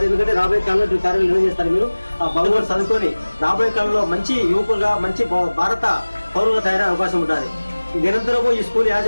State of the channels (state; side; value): inverted; both; correlation -1.00